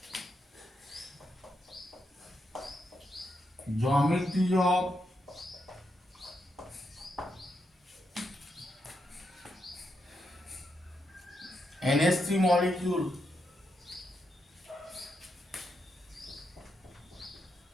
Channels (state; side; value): normal; both; correlation 0.83